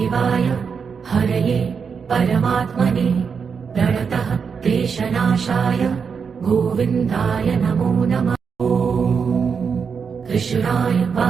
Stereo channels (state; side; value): quieter; left; 6.1 dB